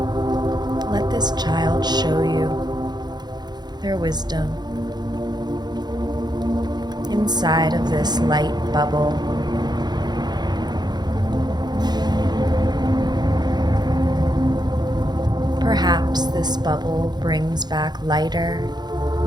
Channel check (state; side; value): late; left; 0.20 ms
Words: Let this child show you their wisdom inside of this light bubble. Perhaps this bubble brings back lighter,